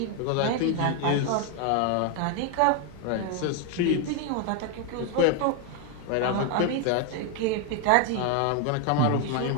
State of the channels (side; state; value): both; different; correlation 0.01